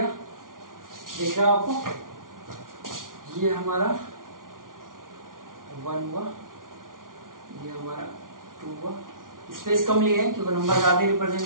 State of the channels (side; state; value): left; late; 0.89 ms